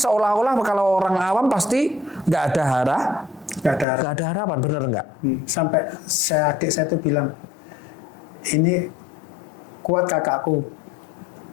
kalau orang awam pasti nggak ada harapan, bener nggak? Sampai adik saya tuh bilang, ini kuat kakakku,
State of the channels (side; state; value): right; drops out; at 3.9 s